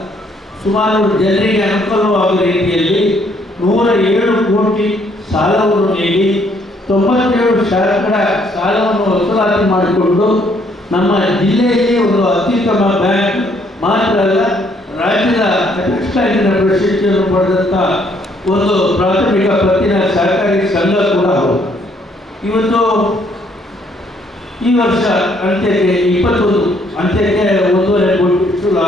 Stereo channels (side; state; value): both; normal; correlation 0.67